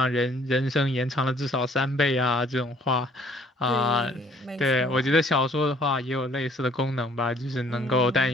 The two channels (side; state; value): both; normal; correlation 0.59